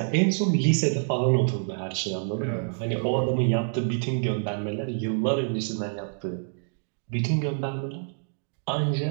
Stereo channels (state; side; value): silent; left; digital silence